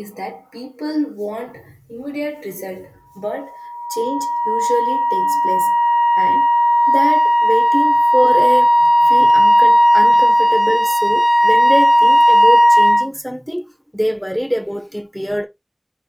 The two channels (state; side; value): identical; both; correlation 1.00